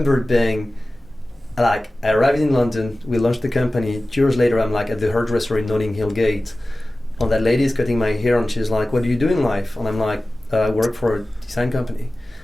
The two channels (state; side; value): normal; both; correlation 0.96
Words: being like, I arrived in London, we launched the company. 2 years later, I'm like at the hairdresser in Notting Hill Gate, And that lady is cutting my hair, and she's like, "What do you do in life?" And I'm like, "I work for a design company."